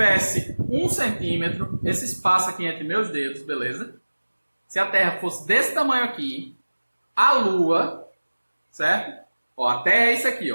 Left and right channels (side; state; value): both; inverted; correlation -1.00